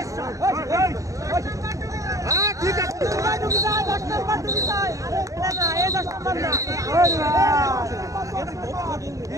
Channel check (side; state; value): left; late; 0.16 ms